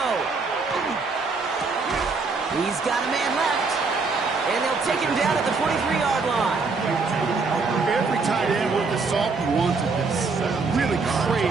He's got a man left. And they'll take him down at the 43-yard line. Every tight end with the salt wanted this. Really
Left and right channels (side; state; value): left; quieter; 4.3 dB